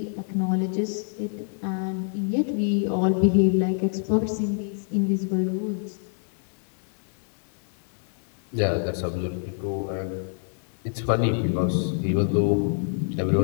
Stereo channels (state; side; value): silent; right; 61 dB below the other